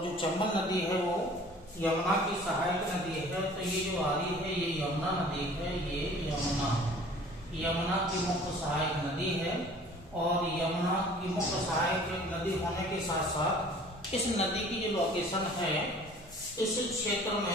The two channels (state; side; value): normal; both; correlation 0.49